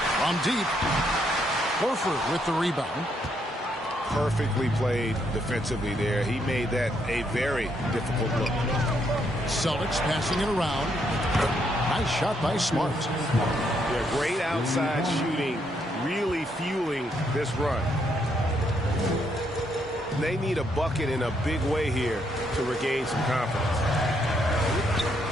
From deep. Horford with the rebound. Perfectly played defensively there. He made that a very difficult look. Celtics passing it around. Nice shot by Smart. Yeah, great outside shooting, really fueling this run. They need a bucket in a big way here to regain some confidence.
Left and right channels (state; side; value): normal; both; correlation 0.74